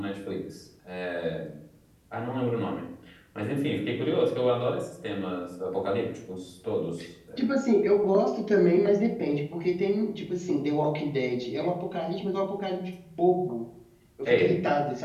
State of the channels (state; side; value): identical; both; correlation 1.00